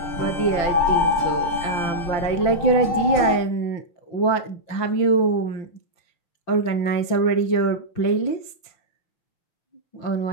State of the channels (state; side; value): late; right; 5.9 ms